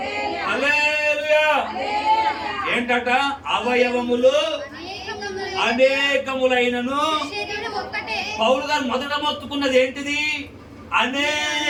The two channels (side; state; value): both; identical; correlation 1.00